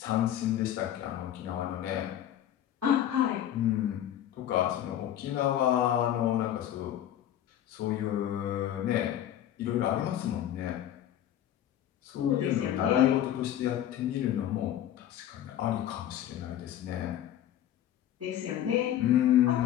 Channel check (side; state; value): right; quieter; 11.5 dB